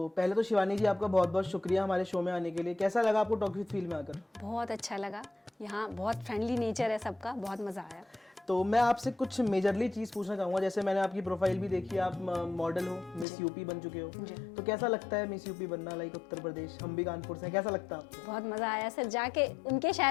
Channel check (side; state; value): right; drops out; at 13.2 s